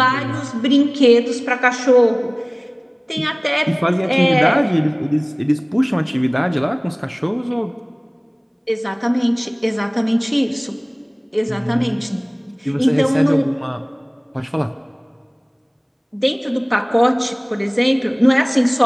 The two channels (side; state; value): both; identical; correlation 1.00